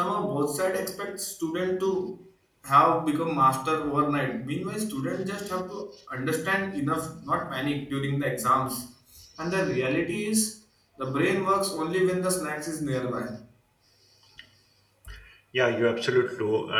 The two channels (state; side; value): identical; both; correlation 1.00